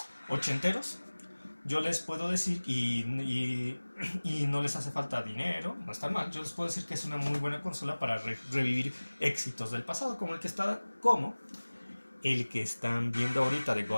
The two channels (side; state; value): both; inverted; correlation -1.00